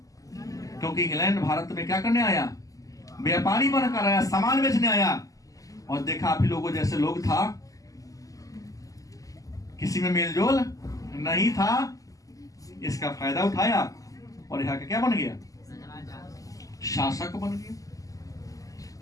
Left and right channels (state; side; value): late; right; 0.17 ms